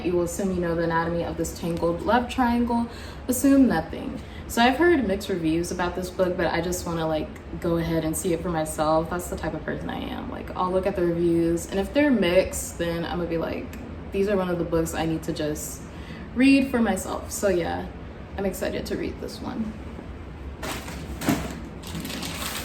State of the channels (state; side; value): identical; both; correlation 1.00